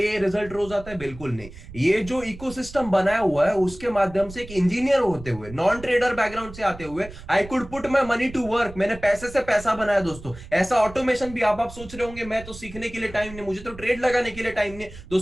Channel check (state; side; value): noise; right; rumble, 16 dB below the sound